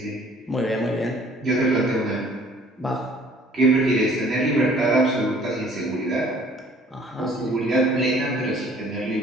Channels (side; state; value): both; normal; correlation 0.55